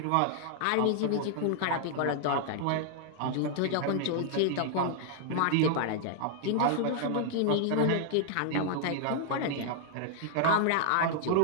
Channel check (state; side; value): different; both; correlation -0.01